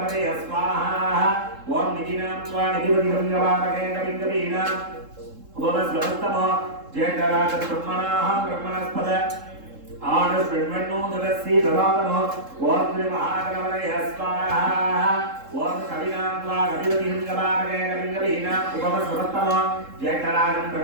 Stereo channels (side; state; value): left; late; 3.7 ms